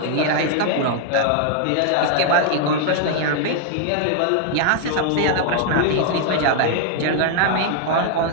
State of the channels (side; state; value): both; different; correlation 0.00